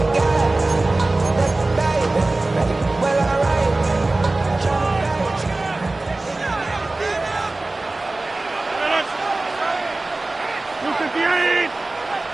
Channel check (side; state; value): left; quieter; 3.0 dB